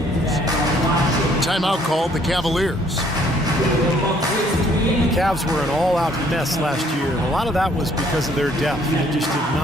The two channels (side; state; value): both; normal; correlation 0.63